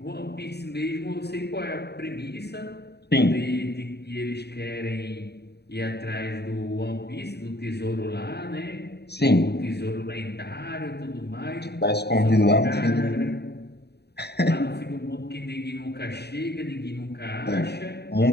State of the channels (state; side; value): late; right; 0.48 ms